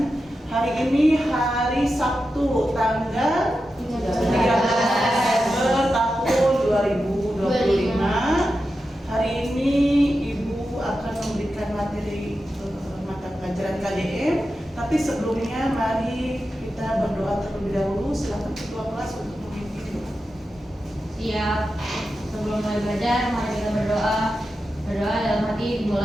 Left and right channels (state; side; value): normal; both; correlation 0.90